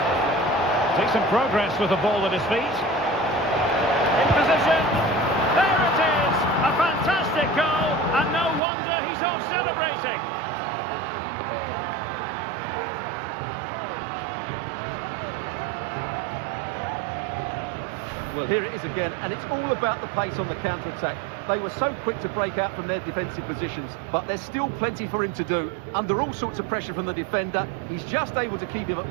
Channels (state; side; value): drops out; left; at 8.6 s